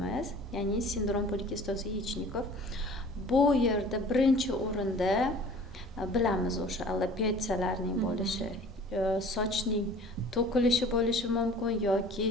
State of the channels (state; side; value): normal; both; correlation 0.46